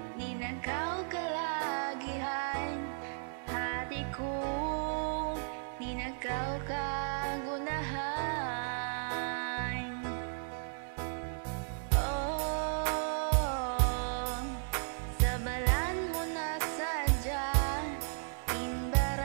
ninakaw kalagihan. Hati ko, ninakaw kagunahan. Oh, sa balan mo na sadya,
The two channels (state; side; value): silent; left; 55 dB below the other